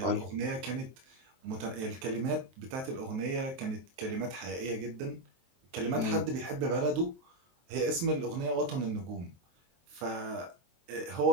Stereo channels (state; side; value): late; left; 23 ms